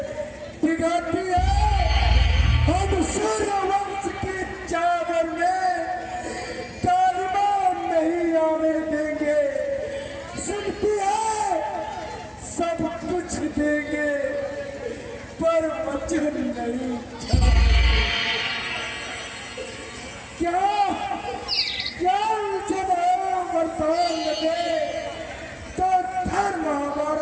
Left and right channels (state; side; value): identical; both; correlation 1.00